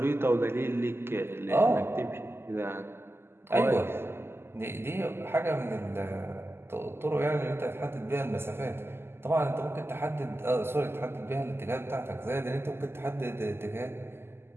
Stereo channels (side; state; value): left; late; 0.12 ms